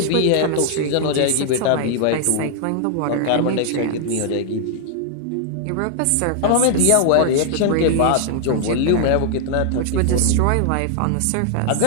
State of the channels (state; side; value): different; both; correlation 0.00